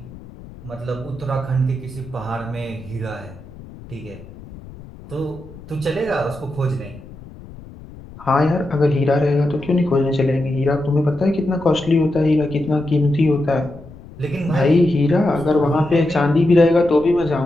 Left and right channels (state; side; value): noise; left; rumble, 18 dB below the sound